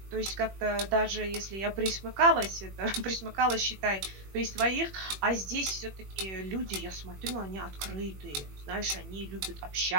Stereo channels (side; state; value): left; late; 21 ms